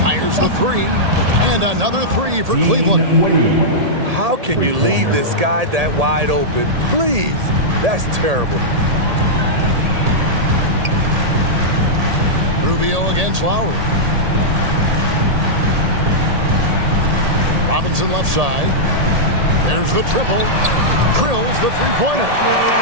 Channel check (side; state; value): left; late; 1.8 ms